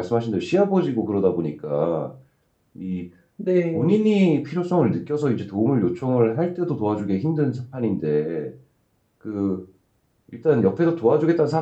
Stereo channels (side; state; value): both; identical; correlation 1.00